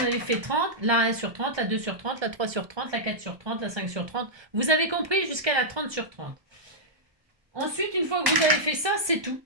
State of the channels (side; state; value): left; late; 1.2 ms